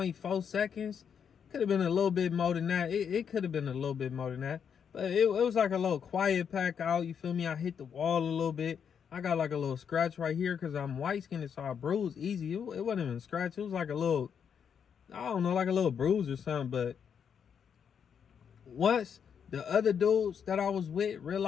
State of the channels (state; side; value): quieter; right; 7.5 dB